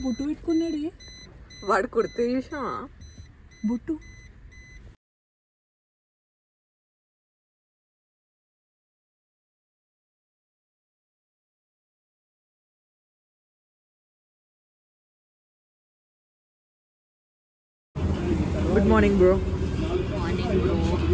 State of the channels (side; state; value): both; identical; correlation 1.00